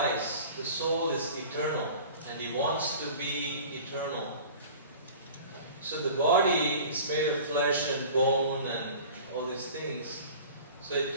The soul is eternal, and he wants to be eternal. So the body is made of flesh and bone and all these things, so it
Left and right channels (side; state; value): both; inverted; correlation -0.42